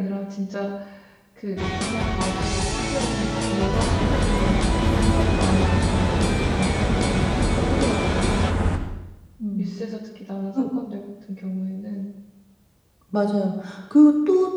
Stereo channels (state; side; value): identical; both; correlation 1.00